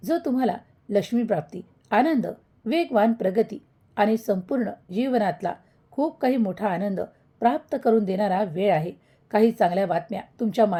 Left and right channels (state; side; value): identical; both; correlation 1.00